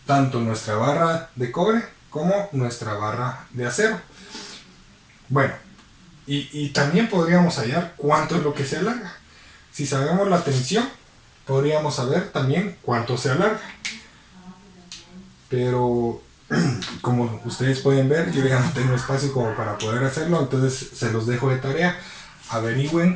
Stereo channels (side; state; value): both; identical; correlation 1.00